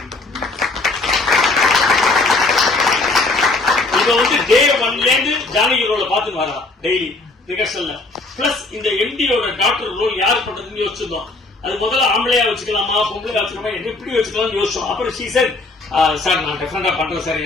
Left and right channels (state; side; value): quieter; right; 3.3 dB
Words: இத வந்து டே 1ல இருந்து ஜானகி ரோல பாத்துட்டு வரா டெய்லி ரிகர்சல்ல. பிளஸ் இந்த எம்டியோட டாக்டர் ரோல் யார் பண்றதுன்னு யோசிச்சிருந்தோம். அது முதல்ல ஆம்பளையா வச்சுக்கலாமா பொம்பளையா வச்சுக்கலாமா எப்படி வச்சுக்கலாம்னு யோசிச்சோம். அப்புறம் ஷீ செட் சார் நான் டெஃபரெண்டா பண்றேன் சார்,